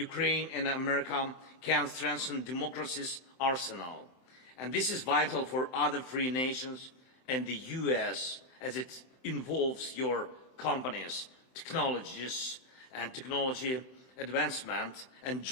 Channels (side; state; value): right; late; 31 ms